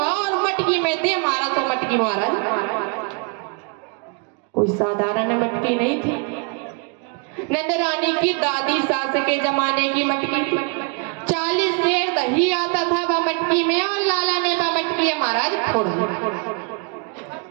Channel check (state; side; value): quieter; left; 34.0 dB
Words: और मटकी में दे मारा। तो मटकी महाराज कोई साधारण मटकी नहीं थी, नंदरानी की दादी सास के जमाने की मटकी। 40 सेर दही आता था वह मटकी में, और लाला ने वह मटकी महाराज फोड़ दी।